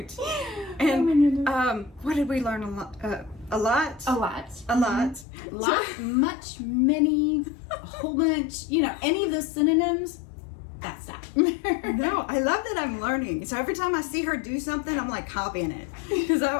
And oh my goodness. what did we learn a lot? A lot. A lot. A lot. Lot, much, many, a whole bunch. You know, any of those synonyms. That's that. No, I love that I'm learning. So every time I see her do something, I'm like copying it because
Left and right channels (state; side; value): drops out; right; at 5.2 s